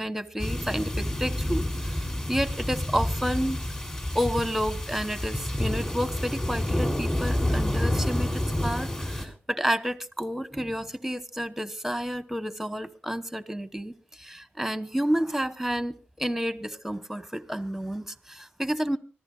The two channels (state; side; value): normal; both; correlation 0.96